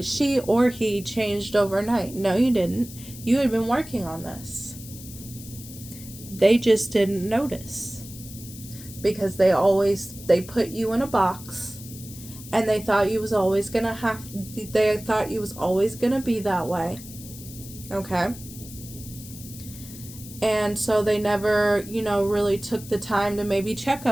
or he changed overnight. No, you didn't. You had been working on this. They just didn't notice, because they put you in a box, and they thought you was always gonna be that way. Okay. And so they never, you know, really took the time to maybe check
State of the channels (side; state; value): left; noise; hiss, 15 dB below the sound